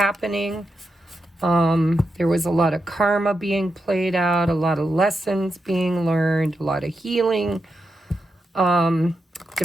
There was a lot of karma being played out, a lot of lessons being learned, a lot of healing.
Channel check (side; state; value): both; normal; correlation 0.86